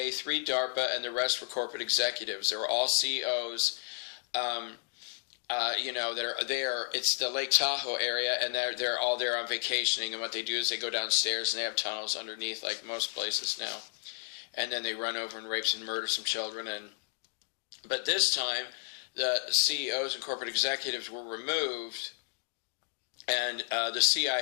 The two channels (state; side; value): silent; right; 56 dB below the other